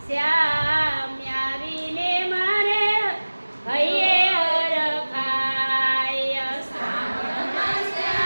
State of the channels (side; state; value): both; inverted; correlation -1.00